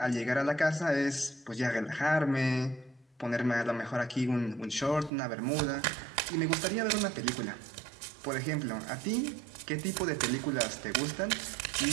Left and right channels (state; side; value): drops out; left; at 5.1 s